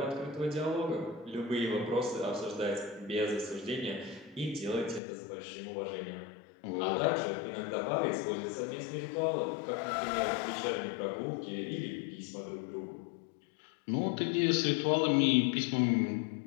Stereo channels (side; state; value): right; drops out; at 5.0 s